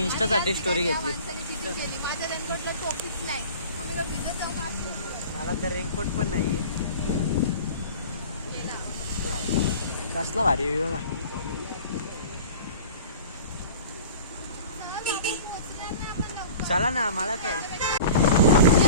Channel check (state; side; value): inverted; both; correlation -0.41